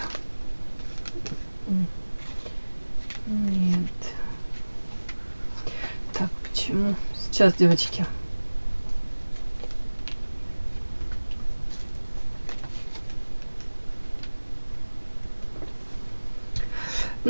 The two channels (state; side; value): inverted; both; correlation -1.00